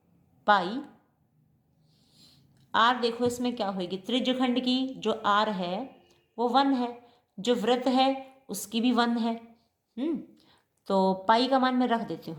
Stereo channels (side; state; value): both; identical; correlation 1.00